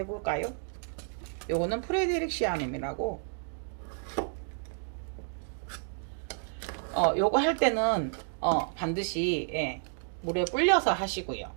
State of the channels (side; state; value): left; silent; 57 dB below the other